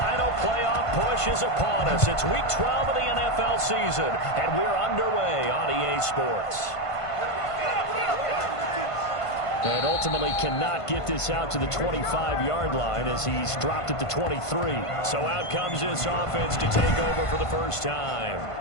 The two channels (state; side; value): late; right; 1.5 ms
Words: playoff push is upon us. It's Week 12 of the NFL season, and we're underway on EA Sports. And ultimately cannot get this out to the 25-yard line as he's dropped it to 23. So out comes this offense to take over for the first time.